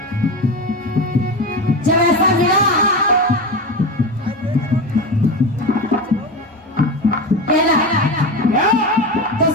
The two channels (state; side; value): normal; both; correlation 0.22